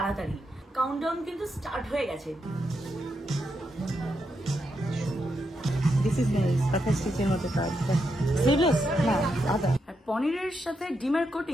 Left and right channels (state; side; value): normal; both; correlation 0.83